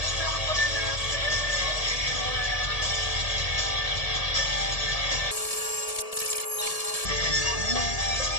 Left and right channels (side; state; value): right; late; 1.8 ms